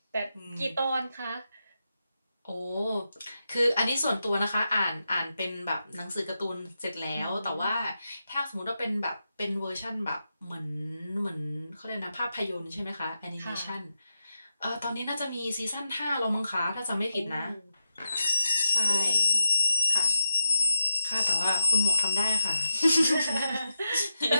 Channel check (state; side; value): inverted; both; correlation -0.89